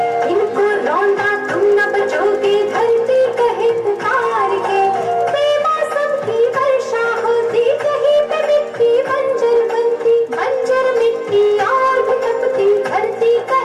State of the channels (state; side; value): identical; both; correlation 1.00